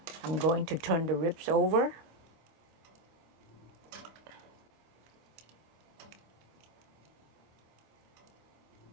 I'm going to turn the ribs over.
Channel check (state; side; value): late; left; 25 ms